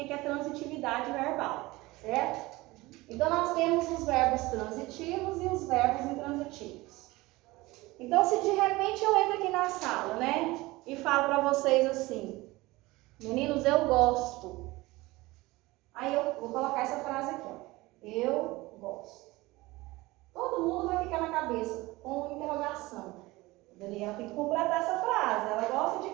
é transitividade verbal, certo? Então, nós temos os verbos transitivos e os verbos intransitivos. Então, se de repente eu entro aqui na sala, né, e falo para vocês assim, meninos, eu gosto. Aí eu vou colocar essa frase aqui, ó. Eu gosto. Todo mundo vai ficar na cabeça com interrogação. A Daniela tem que completar essa frase. Ela gosta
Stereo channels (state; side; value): quieter; left; 20.6 dB